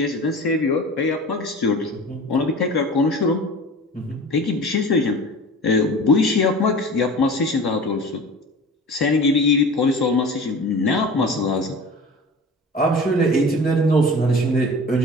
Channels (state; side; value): normal; both; correlation 0.37